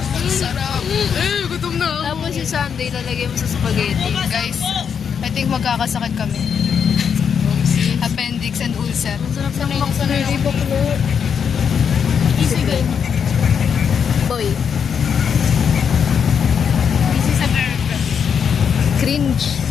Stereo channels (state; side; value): quieter; right; 7.2 dB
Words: Sarap. Gutom na ako. Tapos yung Sunday, lalagay mo sa spaghetti. Guys, I think magkakasakit kami. Appendix and ulcer. Sarap ng macaroni baklo. Easy girl. Boy. Easy sa girl. Cringe.